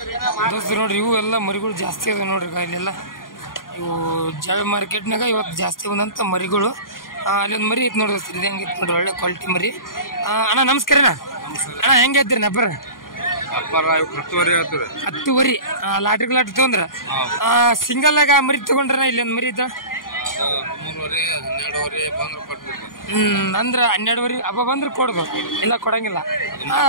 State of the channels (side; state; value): right; late; 0.90 ms